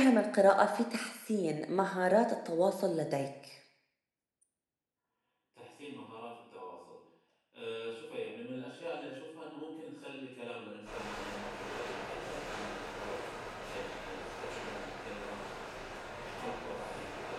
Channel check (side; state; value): both; identical; correlation 1.00